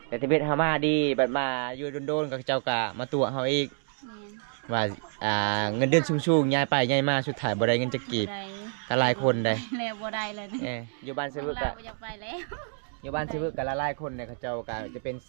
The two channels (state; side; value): silent; left; digital silence